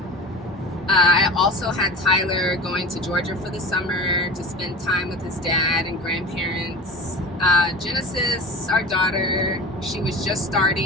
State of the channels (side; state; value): both; normal; correlation 0.33